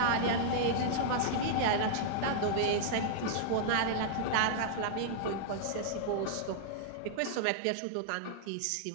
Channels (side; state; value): both; different; correlation -0.01